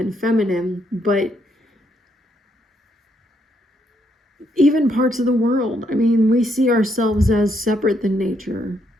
feminine, but even parts of the world. I mean, we see ourselves as separate than nature.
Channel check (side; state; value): both; normal; correlation 0.74